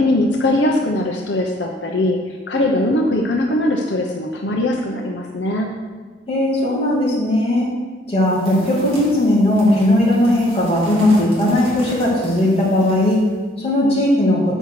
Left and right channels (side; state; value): both; normal; correlation 0.61